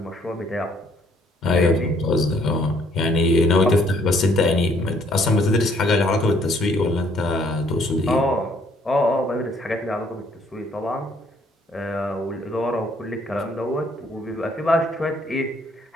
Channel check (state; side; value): normal; both; correlation 0.65